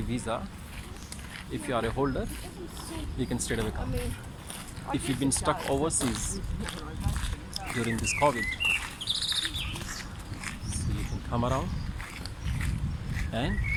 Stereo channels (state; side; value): identical; both; correlation 1.00